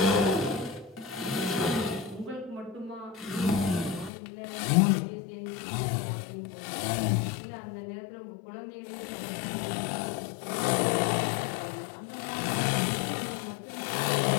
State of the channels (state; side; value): drops out; right; at 4.1 s